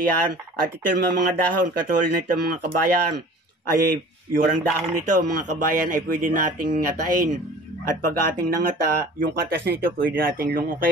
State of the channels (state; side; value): normal; both; correlation 0.44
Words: At ito mga dahon, katulad nito mga kabayan, ay yung dahon nito mga kabayan ay pwede nating ngatain. At pag ating nangata, yung katas nito pwede nating